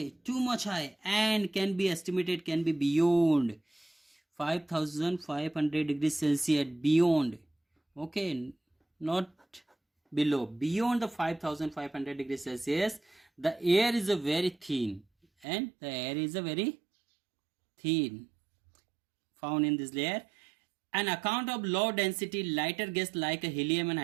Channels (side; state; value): left; drops out; at 15.5 s